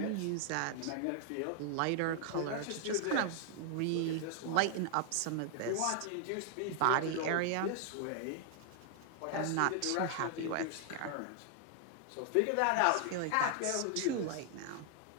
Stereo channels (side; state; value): both; different; correlation 0.00